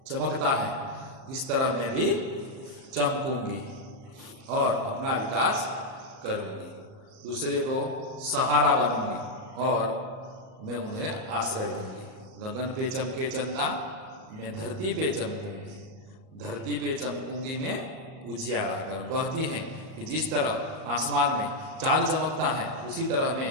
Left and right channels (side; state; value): left; late; 38 ms